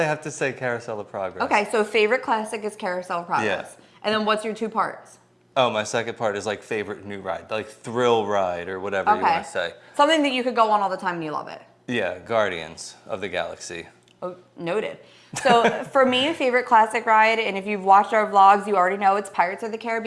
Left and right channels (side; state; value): both; identical; correlation 1.00